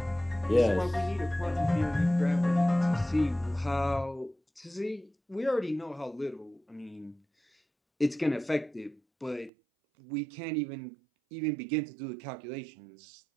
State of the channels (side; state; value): left; drops out; at 9.5 s